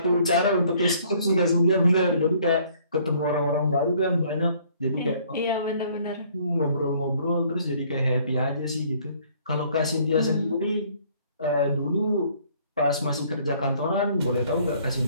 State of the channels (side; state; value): both; inverted; correlation -0.60